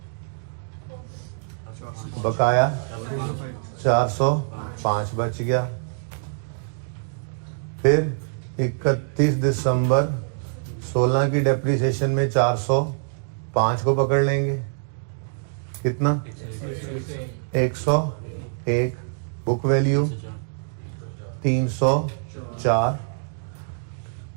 बकाया 405 बच गया। फिर 31 दिसंबर 16 की डेप्रिसिएशन में 405 को पकड़ लेंगे, कितना? 101, बुक वैल्यू 304।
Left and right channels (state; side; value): silent; left; digital silence